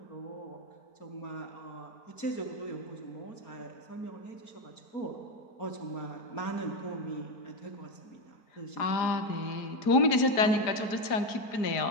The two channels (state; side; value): late; right; 4.9 ms